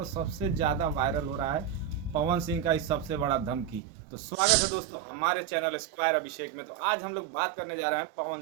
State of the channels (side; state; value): left; drops out; at 3.8 s